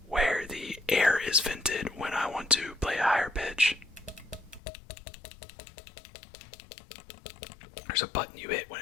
where the air is vented when I want to play a higher pitch. There's a button you hit when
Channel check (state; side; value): drops out; right; at 4.6 s